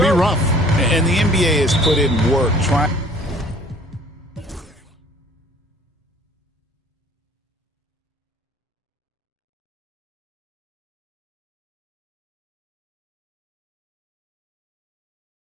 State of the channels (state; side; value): normal; both; correlation 0.53